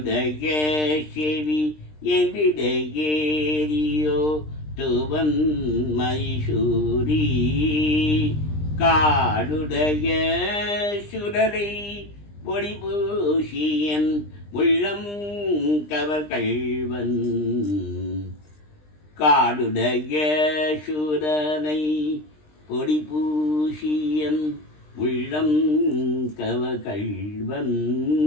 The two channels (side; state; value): right; late; 20 ms